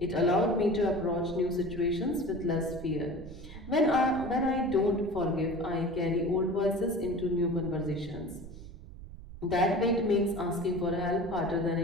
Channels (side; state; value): right; noise; rumble, 14 dB below the sound